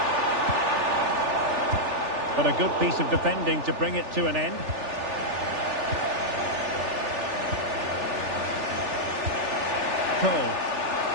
But a good piece of defending to bring it to an end. Cole.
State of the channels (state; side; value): late; left; 3.4 ms